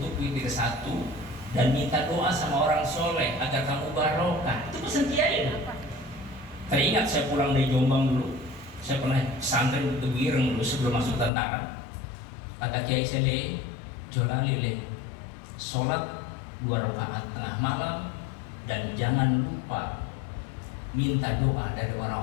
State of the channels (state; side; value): drops out; right; at 11.3 s